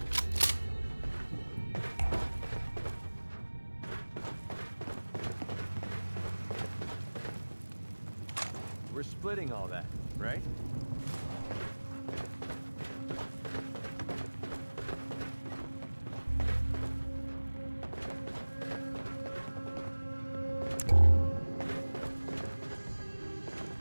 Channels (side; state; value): both; inverted; correlation -1.00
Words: We're splitting all that, right?